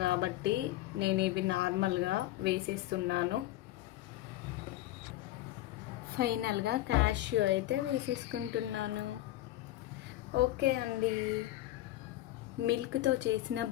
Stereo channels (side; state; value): right; quieter; 15.4 dB